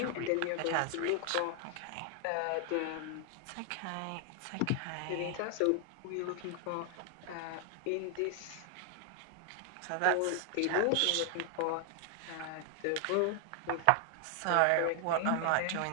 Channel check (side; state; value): both; different; correlation 0.00